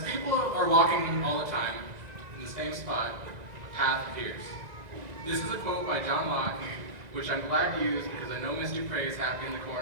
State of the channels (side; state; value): left; late; 2.0 ms